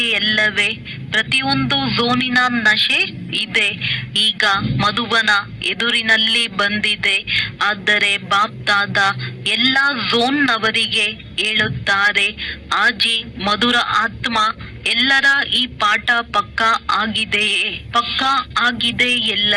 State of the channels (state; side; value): identical; both; correlation 1.00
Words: ಎಲ್ಲವೇ? ಪ್ರತಿಯೊಂದು ಝೋನಿನ ನಶೆ ಇದೆ. ಈಗ ಮಧುಬನ ಎದುರಿನಲ್ಲಿ ಬಂದಿದೆ. ಆದರೆ ಬಾಪ್ ದಾದಾ ಎಲ್ಲ ಝೋನ್ನವರಿಗೆ ಹೇಳುತ್ತಾರೆ, ಆಜಿ ಮಧುರ ಆತ್ಮ ಎಲ್ಲರ ಈ ಪಾಠ ಪಕ್ಕಾ ಆಗಿದೆಯೇ? ಪಕ್ಕಾ ಆಗಿದೆ